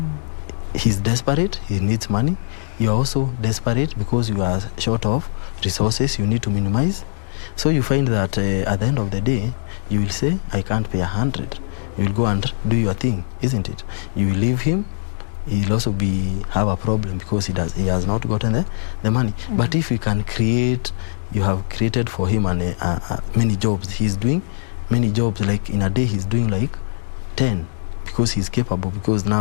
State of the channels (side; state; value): right; silent; digital silence